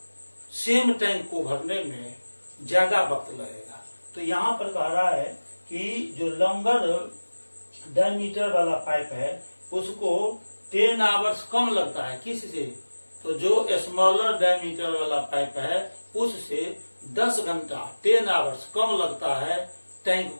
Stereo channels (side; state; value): both; inverted; correlation -1.00